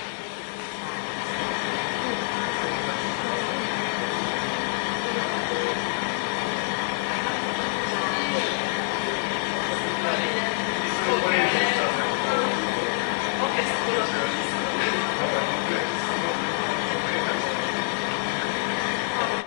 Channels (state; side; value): silent; right; digital silence